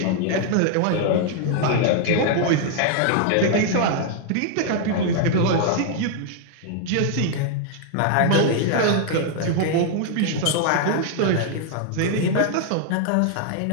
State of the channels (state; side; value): different; both; correlation 0.00